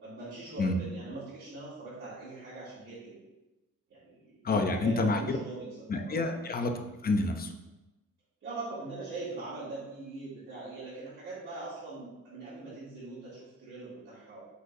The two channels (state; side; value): normal; both; correlation 0.51